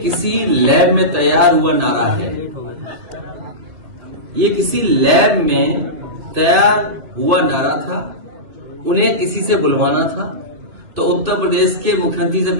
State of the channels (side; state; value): left; late; 3.0 ms